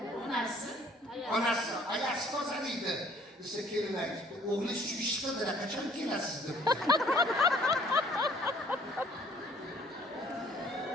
Onasi, ayasi tozalaydi. Desa kelin aytibdi, o'g'li shu ish qildilar, qachon kelasiz deb.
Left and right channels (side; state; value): both; normal; correlation 0.58